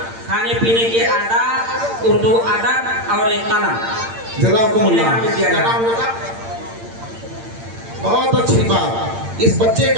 खाने पीने के आदाब, उर्दू अदब और एक कलम। जज़ाकुमुल्लाह। बहुत अच्छी बात। इस बच्चे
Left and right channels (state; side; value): late; left; 8.8 ms